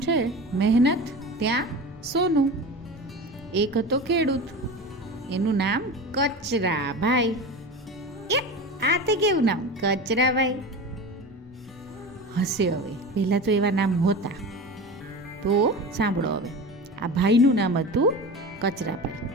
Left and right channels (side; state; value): both; normal; correlation 0.30